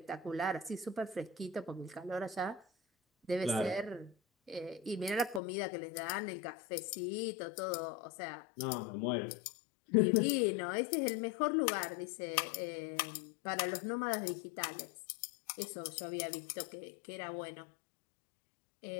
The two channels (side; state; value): right; drops out; at 5.4 s